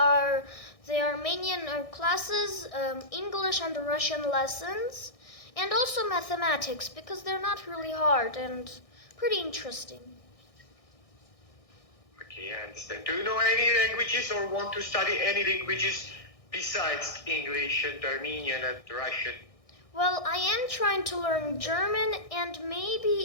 the Armenian classes, English and Russian lessons, and also mathematics because they're not really hard and pretty interesting. Okay, I understand. Do you know any languages or want to study any languages besides English and Armenian and Russian? Well, I am trying to learn German, and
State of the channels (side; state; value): right; late; 1.6 ms